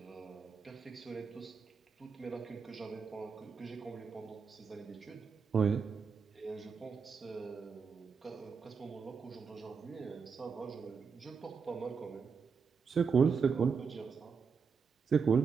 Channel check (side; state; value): left; quieter; 5.6 dB